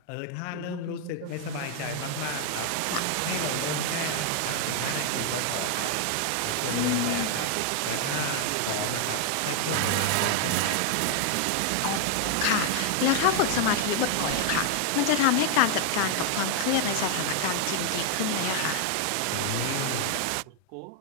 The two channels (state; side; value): different; both; correlation 0.00